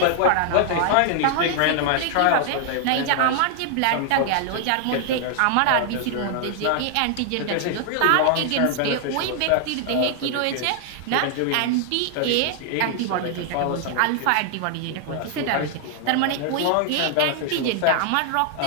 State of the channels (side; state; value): both; different; correlation 0.00